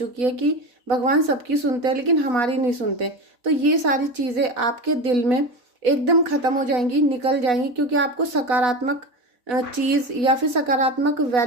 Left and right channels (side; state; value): left; late; 4.1 ms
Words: है कि भगवान सबकी सुनते हैं लेकिन हमारी नहीं सुनते, तो ये सारी चीजें आपके दिल में एकदम खत्म हो जाएंगी, निकल जाएंगी, क्योंकि आपको सकारात्मक चीज या फिर सकारात्मक